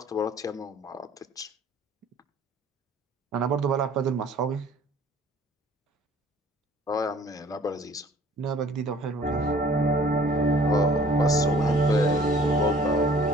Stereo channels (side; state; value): both; normal; correlation 0.53